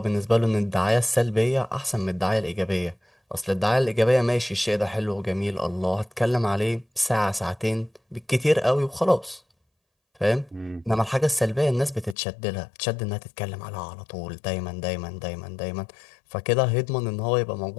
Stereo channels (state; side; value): drops out; right; at 12.2 s